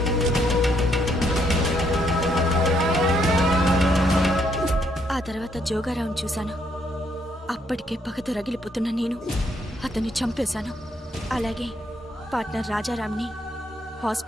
ఆ తర్వాత జోగారావుని చూశాను. అప్పటికే పగతో రగిలిపోతున్న నేను అతన్ని చంపేశాను. అలాగే పార్ట్నర్ రాజారాంని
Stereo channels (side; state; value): both; normal; correlation 0.72